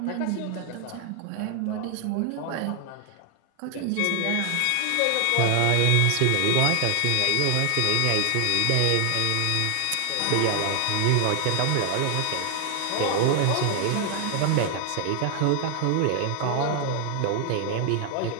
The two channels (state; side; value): different; both; correlation 0.00